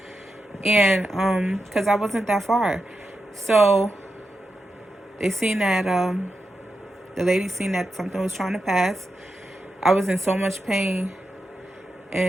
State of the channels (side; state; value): both; normal; correlation 0.88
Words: And because I wasn't that far, so they seen that the lady seen that something was trying to pass. I was in so much pain,